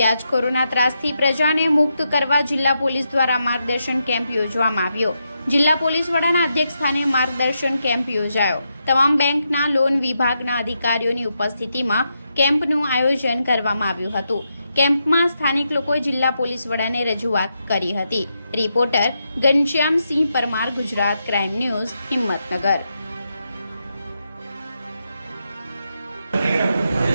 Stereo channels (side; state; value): both; inverted; correlation -0.83